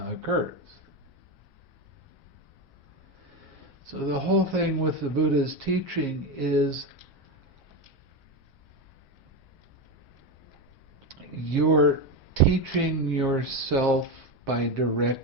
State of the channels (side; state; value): both; normal; correlation 0.14